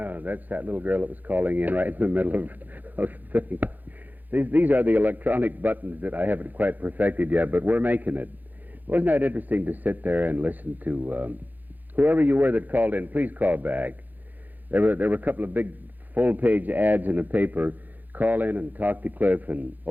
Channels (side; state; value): left; late; 0.084 ms